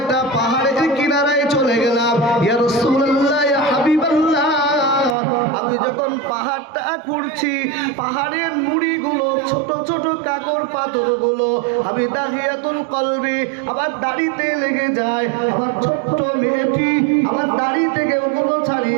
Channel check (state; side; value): drops out; left; at 5.2 s